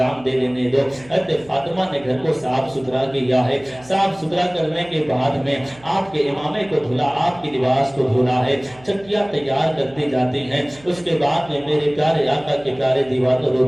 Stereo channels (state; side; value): noise; right; hum, 25 dB below the sound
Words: دے لینے دو۔ حضرت فاطمہ نے گھر کو صاف ستھرا کیا ہے، صاف ستھرا کرنے کے بعد میں آپ کے امامے کو دھلا، آپ کے لباس کو دھلا ہے، چکیاں تیار کرتی جاتی ہیں۔ اس کے بعد میں میرے پیارے آقا کے پیارے دیوانوں